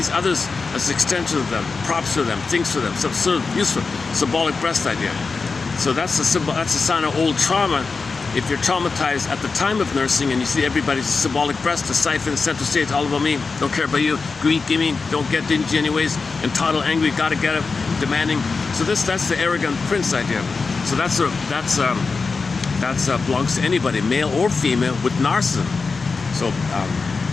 others as extensions of them, props for them, things for them, some sort of useful, symbolic breast idea. So that's a sign of old trauma. If you're traumatized at the time of nursing and you see everybody's symbolic breast, the siphon, center stage, all about me, don't care about you, greed, gimme, don't get dingy anyways, entitled, angry, gotta get it, demanding. So that's the arrogant prince idea. So that belongs to anybody, male or female, with narcissism. So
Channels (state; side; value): quieter; right; 4.5 dB